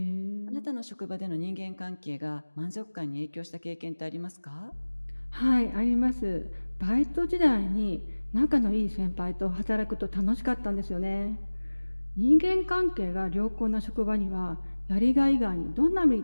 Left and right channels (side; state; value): both; inverted; correlation -1.00